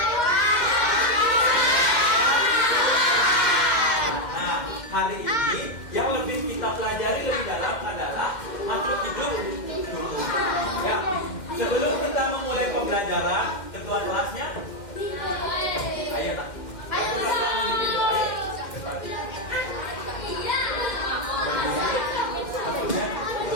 Nah, hari ini yang lebih kita pelajari lebih dalam adalah makhluk hidup tumbuh. Ya, sebelum kita memulai pembelajaran, ketua kelasnya, ayo nak.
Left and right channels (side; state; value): right; late; 2.1 ms